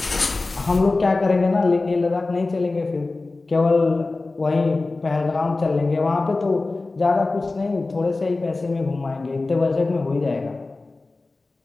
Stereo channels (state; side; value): quieter; right; 3.4 dB